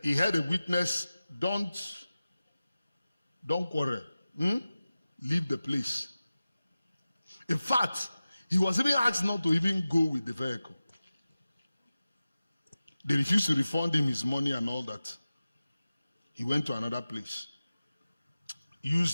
he had a witness, don't quarrel. Leave the place. In fact, he was even asked not to even go with the vehicle. They refused to refund him his money and all that. He went to another place.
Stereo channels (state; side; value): inverted; both; correlation -0.96